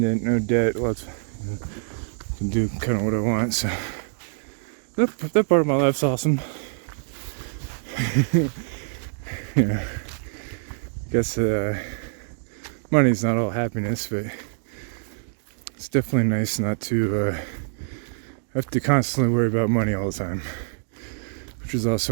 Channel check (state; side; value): silent; left; digital silence